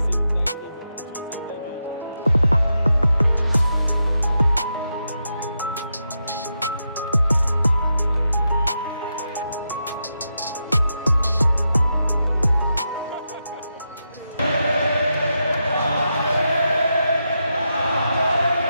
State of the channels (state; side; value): inverted; both; correlation -0.86